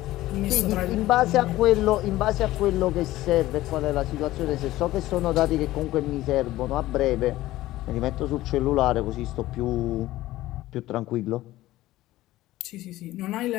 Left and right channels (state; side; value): quieter; right; 16.2 dB